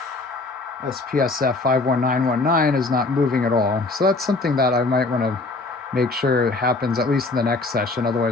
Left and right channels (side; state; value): right; quieter; 3.4 dB